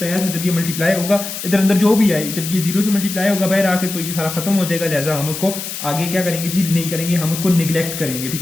था जब ये मल्टीप्लाई होगा इधर अंदर जो भी आए, जब ये 0 से मल्टीप्लाई होगा बाहर आकर, तो ये सारा खत्म हो जाएगा। लिहाजा हम उसको आगे क्या करेंगे जी, नहीं करेंगे, हम उसको निगलेक्ट करेंगे, ठीक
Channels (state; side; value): noise; left; hiss, 7 dB below the sound